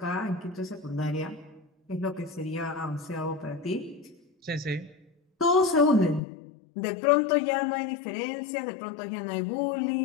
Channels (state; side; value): drops out; right; at 6.2 s